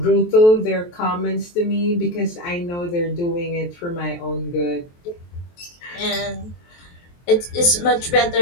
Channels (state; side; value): late; right; 23 ms